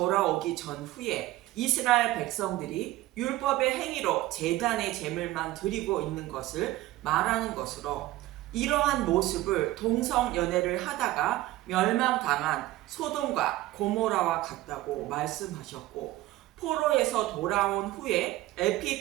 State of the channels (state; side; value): quieter; left; 16.6 dB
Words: 전후에 이스라엘 백성들이 율법의 행위로 제단의 제물만 드리고 있는 것을 말하는 것으로, 이러한 모습을 동성연애를 하다가 멸망당한 소돔과 고모라와 같다고 말씀하셨고, 포로에서 돌아온 후에